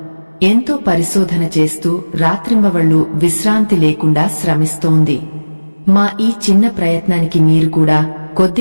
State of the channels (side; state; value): both; inverted; correlation -1.00